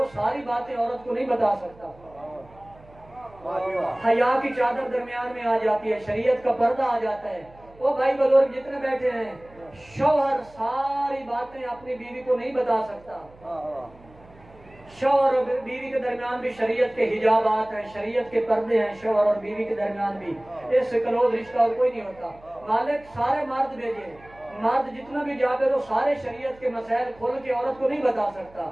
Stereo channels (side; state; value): right; noise; hum, 25 dB below the sound